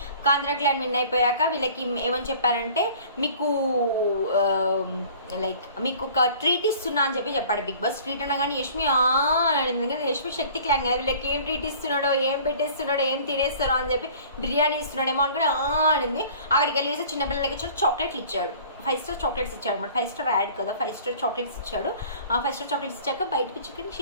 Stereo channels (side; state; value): both; inverted; correlation -0.48